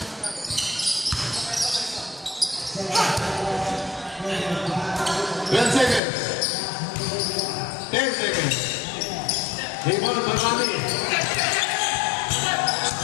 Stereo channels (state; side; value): drops out; right; at 6.0 s